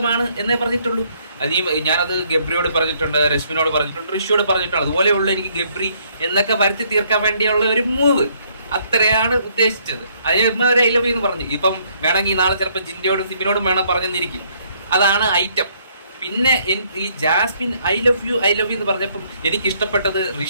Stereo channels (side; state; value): both; inverted; correlation -0.67